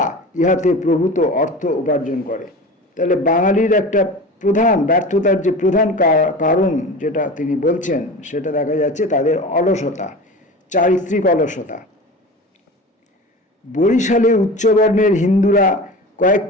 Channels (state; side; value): normal; both; correlation 0.33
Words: ইহাতে প্রভূত অর্থ উপার্জন করে। তাহলে বাঙালির একটা প্রধান ব্যর্থতার যে প্রধান কারণ যেটা তিনি বলছেন, সেটা দেখা যাচ্ছে তাদের অলসতা, চারিত্রিক অলসতা। বরিশালে উচ্চবর্ণের হিন্দুরা